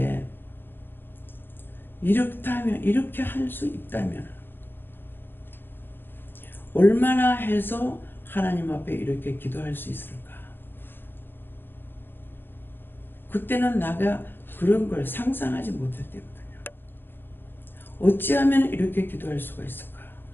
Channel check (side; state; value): right; late; 0.098 ms